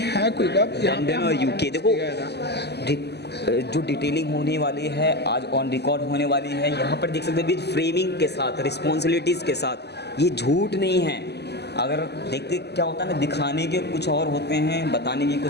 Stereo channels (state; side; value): late; right; 0.49 ms